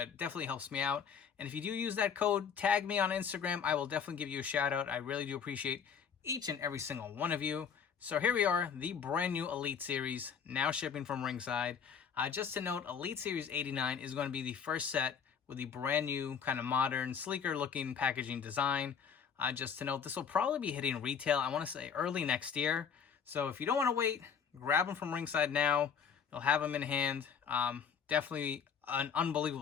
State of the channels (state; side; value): quieter; right; 7.1 dB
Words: definitely helps me out. And if you do use that code, tag me on Instagram. I will definitely give you a shout out. I really do appreciate each and every single one of you. So here we are, the brand new Elite Series, now shipping from Ringside. Just to note, Elite Series 89 is going to be the first set with the brand new, kind of modern, sleeker looking packaging design. Just to note, this will probably be hitting retail, I want to say early next year. So if you don't want to wait, grab them from Ringside now. They'll have them in hand. Definitely an